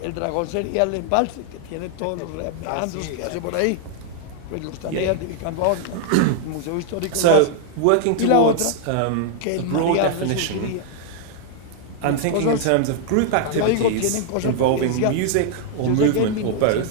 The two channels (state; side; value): different; both; correlation 0.00